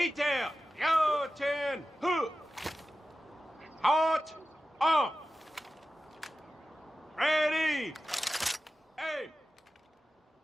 yo 10, who? Hot, on. Ready, aim,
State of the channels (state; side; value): normal; both; correlation 0.94